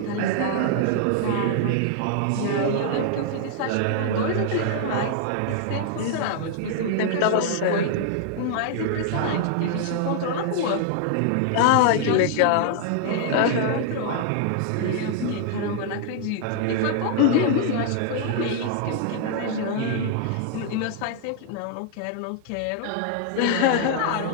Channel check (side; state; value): both; different; correlation -0.01